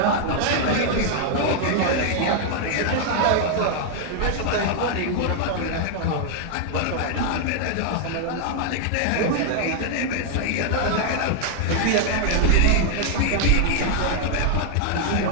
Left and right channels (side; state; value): both; different; correlation 0.00